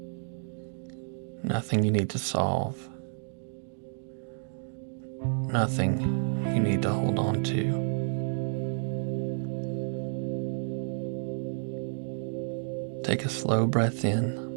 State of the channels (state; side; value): silent; left; digital silence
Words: nothing you need to solve, nothing you need to hold on to. Take a slow breath